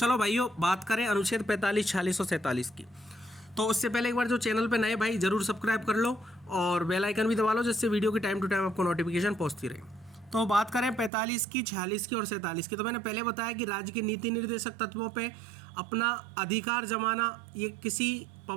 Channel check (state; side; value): drops out; left; at 11.1 s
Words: भाइयों, बात करें अनुच्छेद 45, 46 और 47 की। तो उससे पहले एक बार जो चैनल पे नए भाई जरूर सब्सक्राइब कर लो और बेल आइकन भी दबा लो, जिससे वीडियो की टाइम टू टाइम आपको नोटिफिकेशन पहुंचती रहे। तो बात करें 45 की, 46 की और 47 की। तो मैंने पहले बताया कि राज्य के नीति निर्देशक तत्वों पे अपना अधिकार जमाना ये किसी